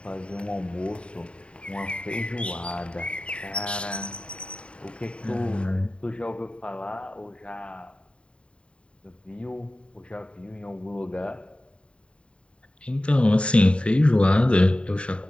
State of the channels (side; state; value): right; late; 0.057 ms